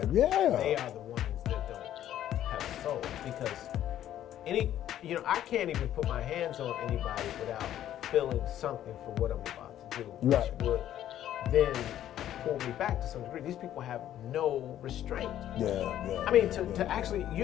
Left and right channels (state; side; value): quieter; right; 11.7 dB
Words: Yeah. They are the ones that don't have a soul, because you know, I can't even put my hands on anybody without feeling something for what I'm about to do, which Right. would then pull me back to some degree. These people have no restraint. Yeah. I mean, to actually,